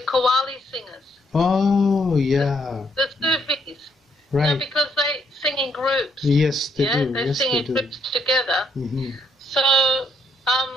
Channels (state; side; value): normal; both; correlation 0.72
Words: singers. Oh, yeah. The Sufis. Right. Because they sing in groups. Yes, they do. They yes, sing they in do. groups together. Mm-hmm. So